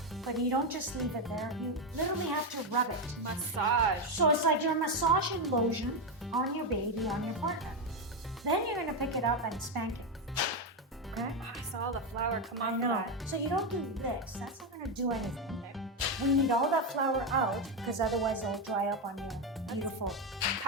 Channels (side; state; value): both; normal; correlation 0.08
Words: but you don't just leave it there. You literally have to rub it. Massage. So it's like you're massaging lotion on your baby, on your partner. Then you're gonna pick it up and spank it. Okay? Oh, I saw the flour come off I of know. that. So you don't do this. That's not gonna do anything. Okay. We need all that flour out because otherwise it'll dry up on your beautiful